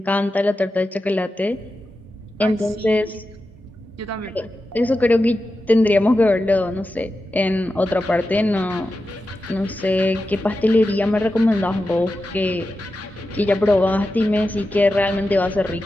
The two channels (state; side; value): normal; both; correlation 0.91